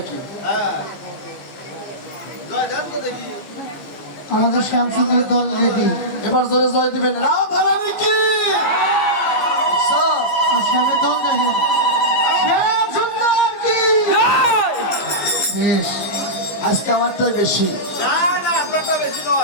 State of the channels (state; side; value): late; right; 15 ms